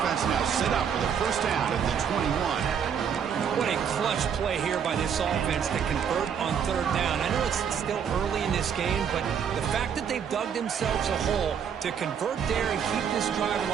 now set up for the 1st down at the 21. What a clutch play here by this offense to convert on 3rd down. I know it's still early in this game, but the fact that they've dug themselves a hole to convert there and keep this drive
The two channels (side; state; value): left; quieter; 7.6 dB